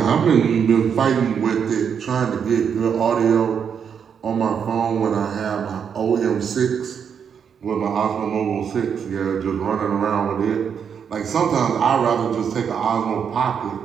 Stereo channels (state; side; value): quieter; left; 7.3 dB